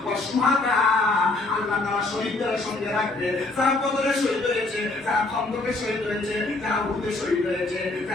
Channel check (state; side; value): quieter; right; 3.1 dB